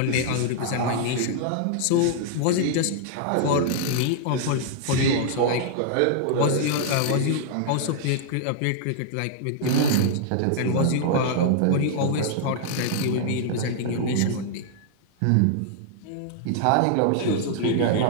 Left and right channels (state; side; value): different; both; correlation -0.01